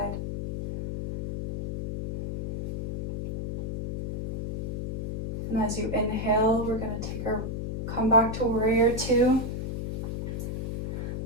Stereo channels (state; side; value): noise; left; hum, 4 dB below the sound